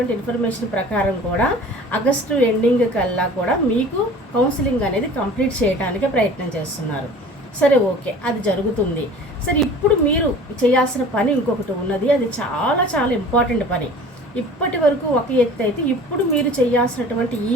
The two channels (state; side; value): normal; both; correlation 0.44